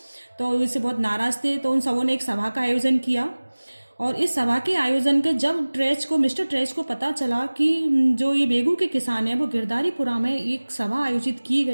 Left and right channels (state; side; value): inverted; both; correlation -1.00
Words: तो इससे बहुत नाराज थे। तो उन सबों ने एक सभा का आयोजन किया। और इस सभा के आयोजन के जब मिस्टर ट्रेच को पता चला कि जो ये बेगू के किसान हैं वो गिरधारीपुरा में एक सभा आयोजित की